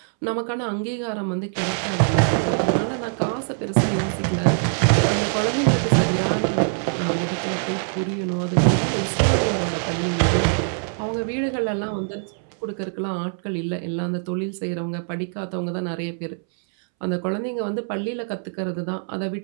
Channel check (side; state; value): left; silent; 63 dB below the other